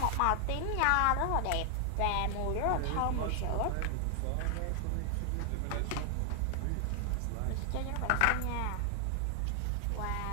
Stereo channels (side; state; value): both; different; correlation 0.00